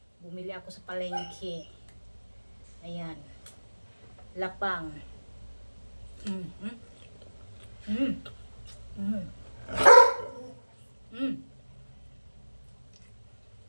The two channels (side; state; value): both; inverted; correlation -1.00